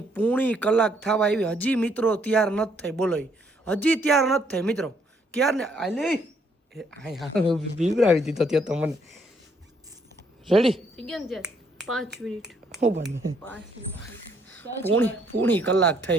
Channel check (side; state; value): both; normal; correlation 0.69